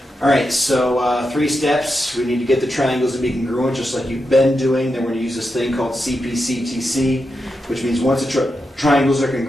All right, so 3 steps. We need to get the triangles to be congruent, just like you've been doing. Then we're going to use this thing called CPCTC, which means once the triangles are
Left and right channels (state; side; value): normal; both; correlation 0.87